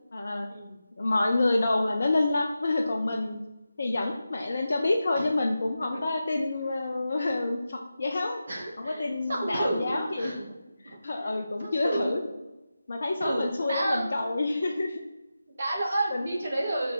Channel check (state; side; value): inverted; both; correlation -0.92